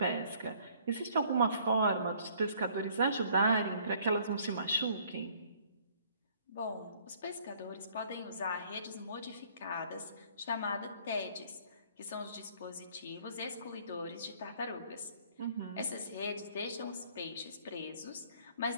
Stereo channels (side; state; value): both; inverted; correlation -0.59